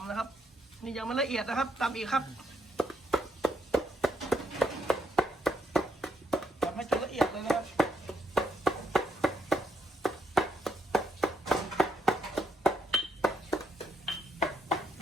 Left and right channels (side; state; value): both; normal; correlation 0.76